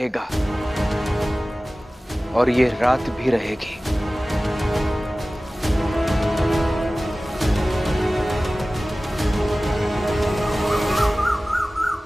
और ये रात भी रहेगी।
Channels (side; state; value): both; normal; correlation 0.97